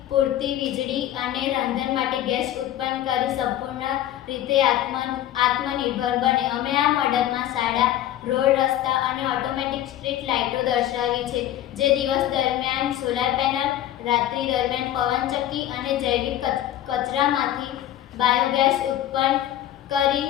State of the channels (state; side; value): quieter; right; 12.5 dB